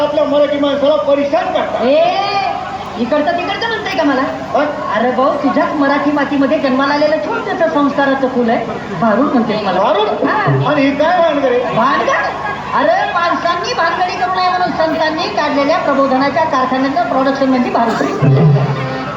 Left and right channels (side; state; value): both; identical; correlation 1.00